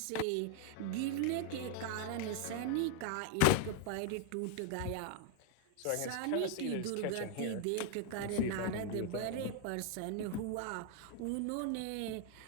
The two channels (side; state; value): both; different; correlation 0.00